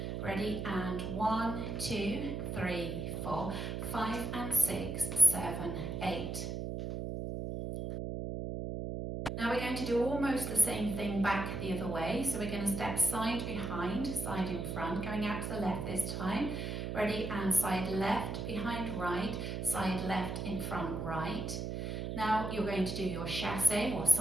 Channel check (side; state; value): right; noise; hum, 4 dB below the sound